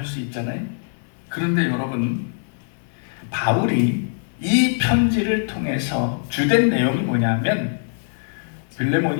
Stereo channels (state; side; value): silent; right; 59 dB below the other